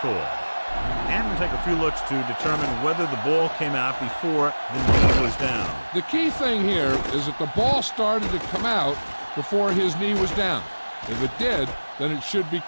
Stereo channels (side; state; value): both; inverted; correlation -1.00